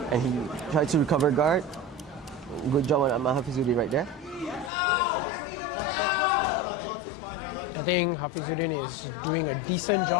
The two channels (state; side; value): drops out; right; at 4.7 s